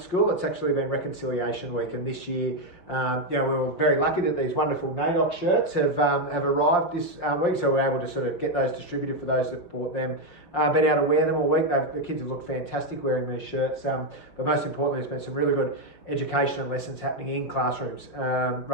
It's actually been Reconciliation Week, and this year, we were very lucky that these wonderful NAIDOC shirts have arrived this week, so we're able to sort of get those distributed for those that bought them. Been able to wear them all week. The kids have looked fantastic wearing these shirts, but most importantly, there's been some really good education and lessons happening in classrooms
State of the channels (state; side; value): late; right; 5.6 ms